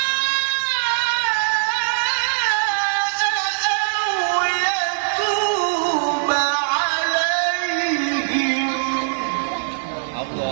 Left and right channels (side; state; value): left; silent; digital silence